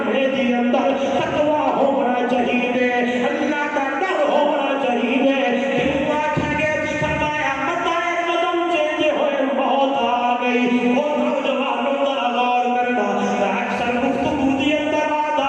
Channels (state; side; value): identical; both; correlation 1.00